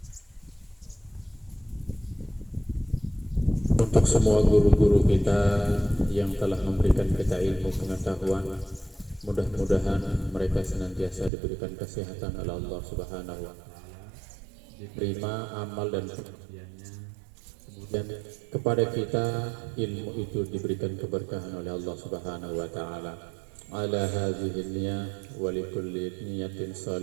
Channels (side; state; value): left; drops out; at 11.3 s